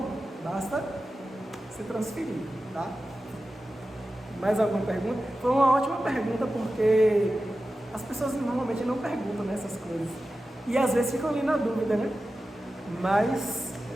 Basta se transferir, tá? Mais alguma pergunta? Foi uma ótima pergunta porque as pessoas normalmente não perguntam nessas coisas. E às vezes ficam ali na dúvida, né? Mas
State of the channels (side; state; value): both; normal; correlation 0.93